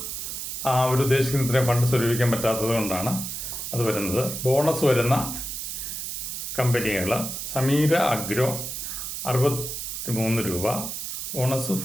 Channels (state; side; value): noise; right; hiss, 5 dB below the sound